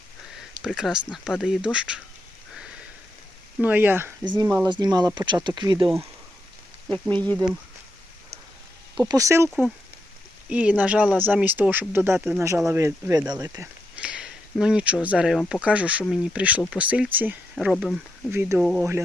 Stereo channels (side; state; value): both; normal; correlation 0.83